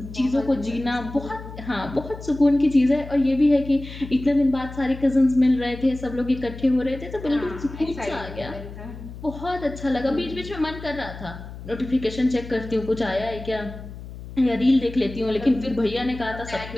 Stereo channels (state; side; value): noise; left; hum, 13 dB below the sound